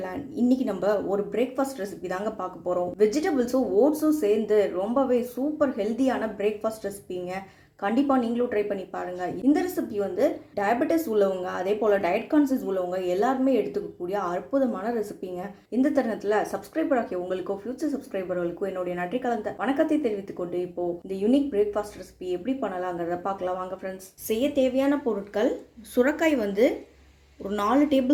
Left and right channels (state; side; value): identical; both; correlation 1.00